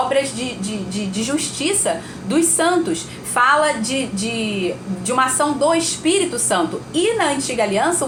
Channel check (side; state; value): both; identical; correlation 1.00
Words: de justiça dos santos. Fala de uma ação do Espírito Santo. E na antiga aliança